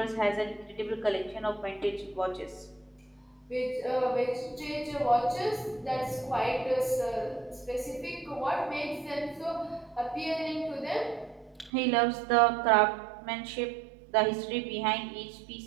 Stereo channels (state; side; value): drops out; left; at 11.7 s